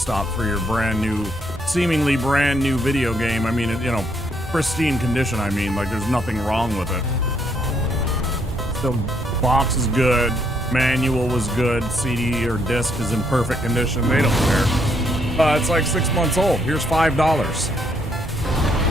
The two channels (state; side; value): normal; both; correlation 0.72